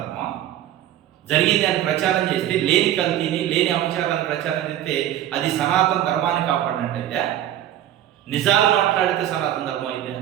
ధర్మం. జరిగింది అని ప్రచారం చేస్తే, లేని కల్తీని, లేని అంశాలను ప్రచారం చేస్తే అది సనాతన ధర్మాన్ని కాపాడినట్టయితే, నిజాలు మాట్లాడితే సనాతన ధర్మం అయితే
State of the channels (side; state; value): left; quieter; 12.0 dB